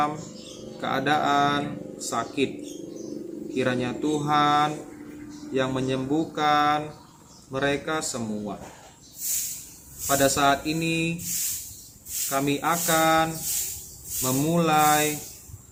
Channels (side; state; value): both; identical; correlation 1.00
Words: keadaan sakit. Kiranya Tuhan yang menyembuhkan mereka semua. Pada saat ini kami akan memulai